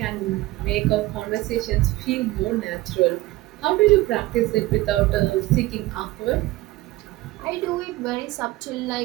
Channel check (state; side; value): quieter; left; 18.4 dB